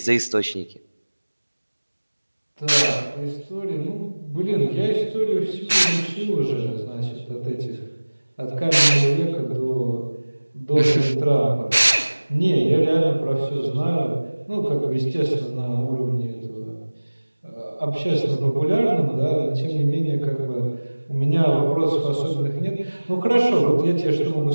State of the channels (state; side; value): inverted; both; correlation -1.00